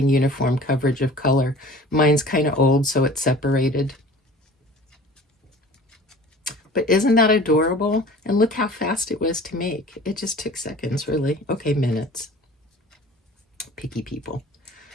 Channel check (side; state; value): both; normal; correlation 0.44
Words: uniform coverage of color. Mine's kind of old, so it's separated. But isn't that adorable? And look how fast it was to make. It just took seconds, really. Okay, minutes. Picky people.